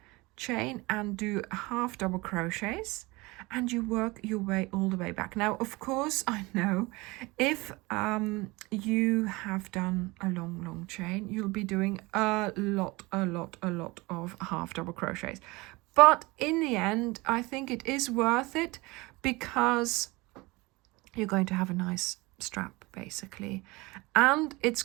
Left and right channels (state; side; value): quieter; left; 23.3 dB